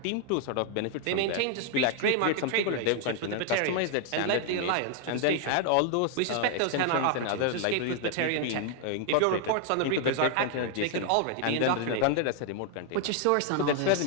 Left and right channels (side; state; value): both; different; correlation 0.00